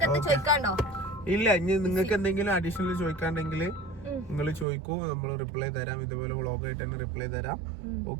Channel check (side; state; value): left; drops out; at 4.7 s